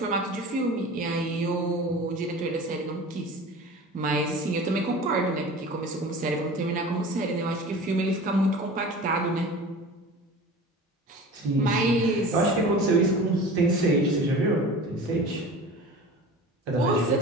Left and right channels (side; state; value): both; normal; correlation 0.38